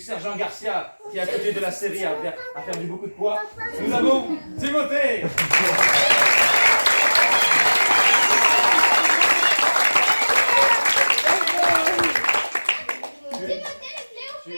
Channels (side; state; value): both; inverted; correlation -1.00